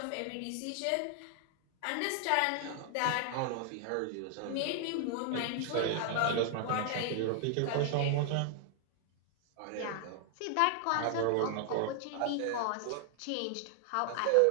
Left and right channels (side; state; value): both; different; correlation 0.00